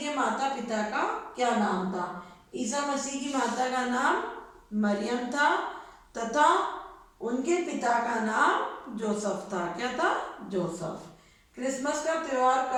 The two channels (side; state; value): both; identical; correlation 1.00